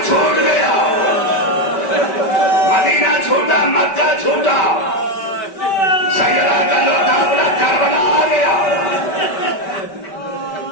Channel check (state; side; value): late; right; 5.1 ms